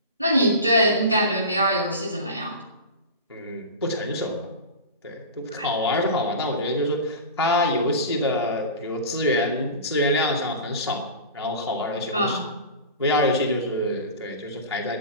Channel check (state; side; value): inverted; both; correlation -0.30